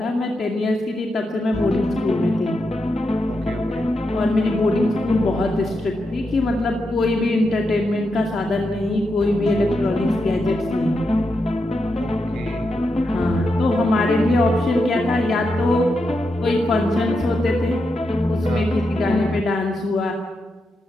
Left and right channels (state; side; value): normal; both; correlation 0.85